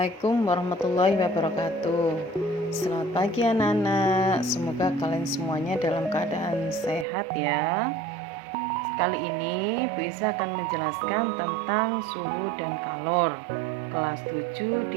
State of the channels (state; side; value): drops out; left; at 7.1 s